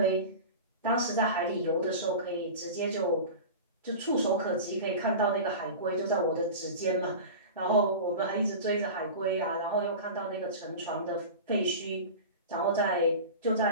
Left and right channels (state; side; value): inverted; both; correlation -0.31